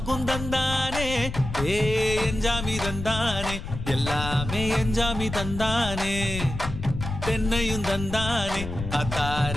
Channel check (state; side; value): noise; left; rumble, 7 dB below the sound